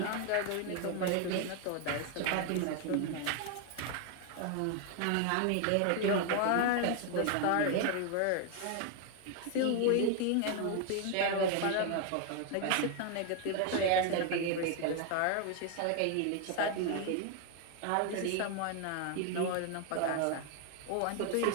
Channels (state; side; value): different; both; correlation 0.01